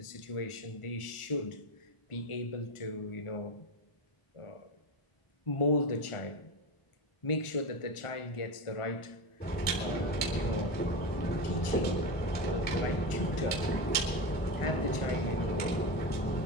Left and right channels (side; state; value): right; late; 1.4 ms